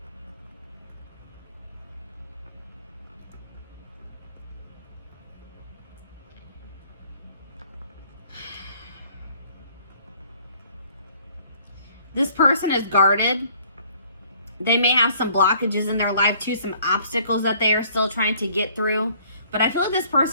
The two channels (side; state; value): both; inverted; correlation -0.58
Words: This person is guarded. They may have some blockages in their life too, some obstacles that they are still trying to get through. But I feel like this